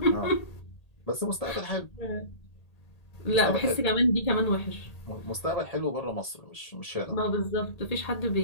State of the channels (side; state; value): right; late; 1.8 ms